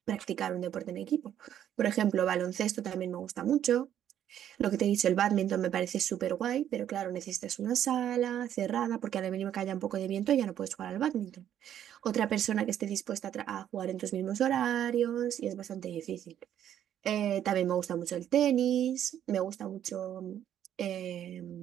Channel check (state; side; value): quieter; left; 10.5 dB